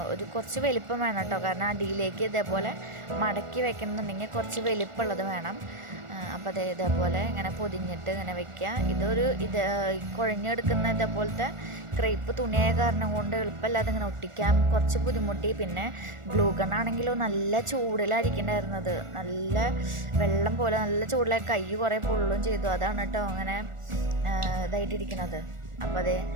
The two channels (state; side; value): late; left; 1.4 ms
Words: ഒരു കുറച്ച് വലിപ്പം വേണം കേട്ടോ. കാരണം അടിയിലേക്ക് ഇതേപോലെ മടക്കി വെക്കണമെന്നുണ്ടെങ്കിൽ കുറച്ച് വലിപ്പമുള്ളത് വേണം. അപ്പോൾ ഇതേപോലെ ഇങ്ങനെ പൊതിഞ്ഞിട്ട് ഇങ്ങനെ വെക്കുക. ഇത് കുഴഞ്ഞെടുക്കുന്ന ഇതേപോലത്തെ ക്രേപ്പ് തുണിയായ കാരണം കൊണ്ട് എളുപ്പമല്ലാതെ ഇങ്ങനെ ഒട്ടിക്കാൻ കുറച്ച് ബുദ്ധിമുട്ടി. പിന്നെ ഗ്ലൂ ഗണ്ണാണെങ്കിലോ നല്ല ചൂടിലായിരിക്കണ്ടായിരുന്നത്, നല്ല വെള്ളം പോലെ നല്ല ചൂടിലായി കൈ കുറേ പൊള്ളും ചെയ്തു. അതാണ് കേട്ടോ അങ്ങനെ ഇതായിട്ടിരിക്കുന്നത്. അപ്പോൾ